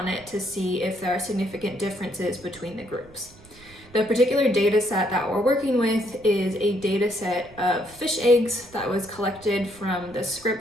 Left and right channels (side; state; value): right; noise; rumble, 24 dB below the sound